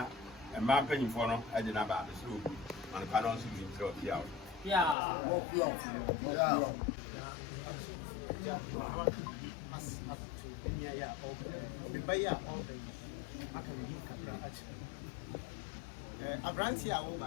mmaa mpanyimfoɔ no ɛde no aba mesrɛ obu manepa no nso bi mesrɛ wɔ pia o abranti a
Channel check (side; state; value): right; drops out; at 5.0 s